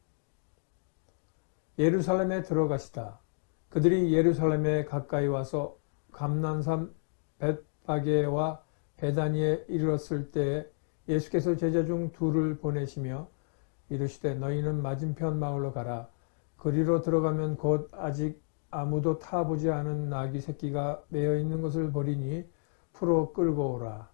예루살렘에 들어가시다. 그들이 예루살렘에 가까이 와서 감난산 벳바게와 베다니에 이르렀을 때에 예수께서 제자 중 둘을 보내시며 이르시되 너희는 맞은편 마을로 가라. 그리로 들어가면 곧 아직 아무도 타보지 않은 나귀 새끼가 매여 있는 것을 보리니 풀어 끌고 오라.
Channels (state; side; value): silent; right; digital silence